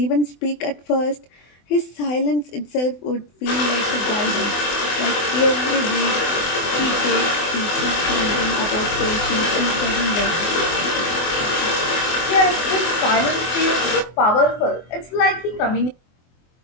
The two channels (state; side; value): late; right; 24 ms